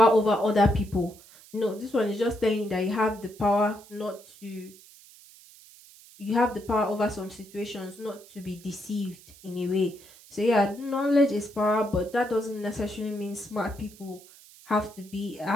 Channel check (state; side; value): noise; right; hiss, 22 dB below the sound